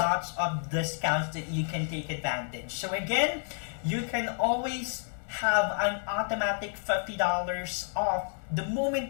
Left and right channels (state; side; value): silent; right; 58 dB below the other